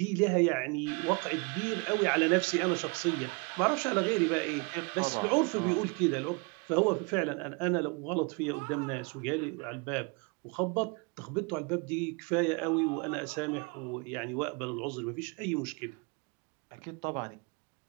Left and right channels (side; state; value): left; quieter; 31.2 dB